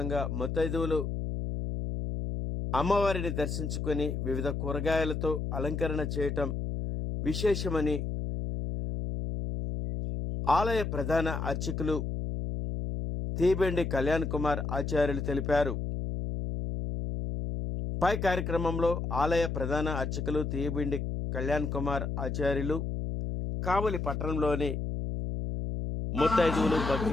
ముత్తైదువులు అమ్మవారిని దర్శించుకొని వివిధ కూరగాయలతో అలంకరణ చేయటం విశేషమని ఆలయ ప్రధాన అర్చకులు తీబెండి కళ్యాణ్ కుమార్ ఆచార్యులు తెలిపారు. పై కార్యక్రమంలో ఆలయ ప్రధాన అర్చకులు తీబెండి కళ్యాణ్ కుమార్ ఆచార్యులు, కావలి పట్టణంలోని ముత్తైదువులు,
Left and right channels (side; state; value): left; noise; hum, 3 dB below the sound